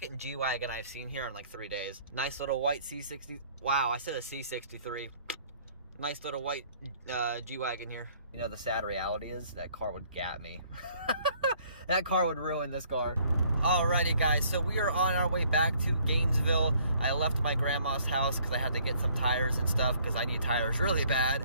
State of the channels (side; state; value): both; inverted; correlation -0.61